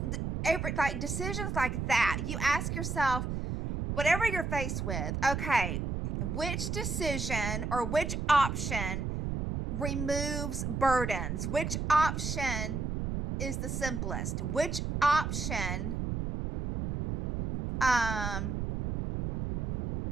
decisions like that, you ask yourself, whatever you're faced with, okay, which decision or which option removes burdens? Which option is the simplest? Which option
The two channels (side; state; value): right; noise; rumble, 2 dB below the sound